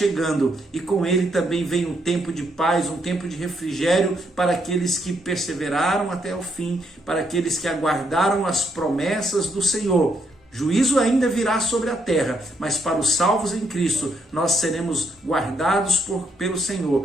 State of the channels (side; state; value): both; normal; correlation 0.75